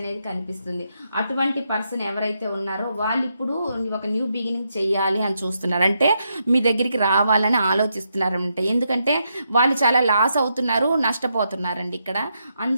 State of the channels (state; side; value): inverted; both; correlation -0.81